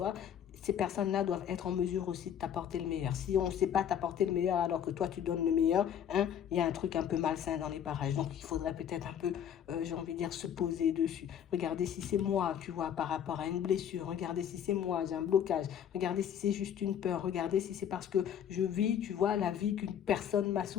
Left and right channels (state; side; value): quieter; right; 9.2 dB